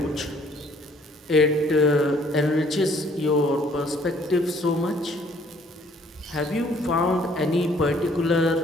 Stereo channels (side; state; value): both; normal; correlation 0.61